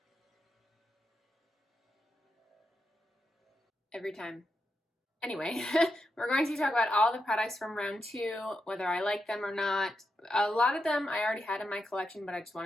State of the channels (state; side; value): normal; both; correlation 0.86